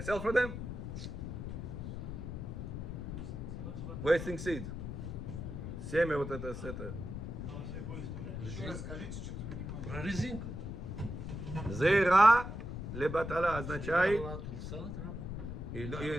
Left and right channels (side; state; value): left; noise; rumble, 6 dB below the sound